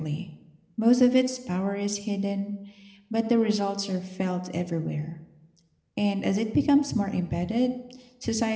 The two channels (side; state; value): both; identical; correlation 1.00